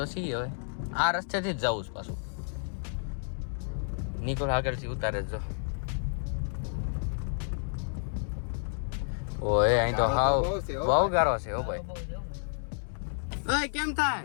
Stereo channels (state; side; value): silent; right; digital silence